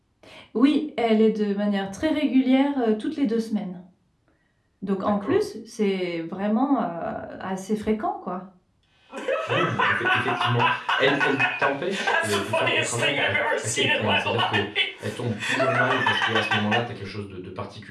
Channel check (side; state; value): both; identical; correlation 1.00